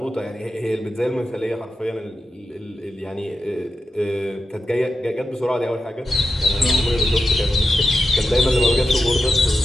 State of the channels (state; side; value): normal; both; correlation 0.89